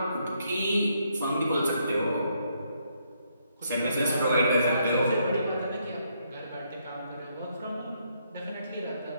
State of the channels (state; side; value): inverted; both; correlation -0.74